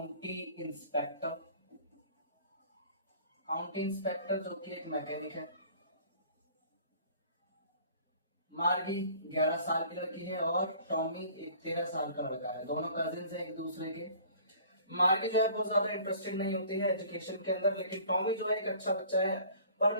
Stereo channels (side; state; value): both; inverted; correlation -0.50